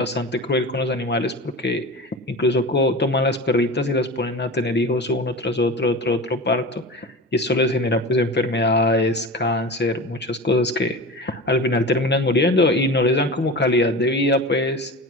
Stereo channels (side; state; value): both; normal; correlation 0.31